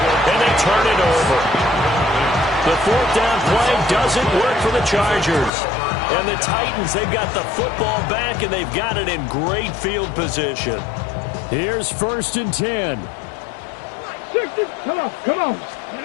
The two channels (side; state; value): right; drops out; at 5.5 s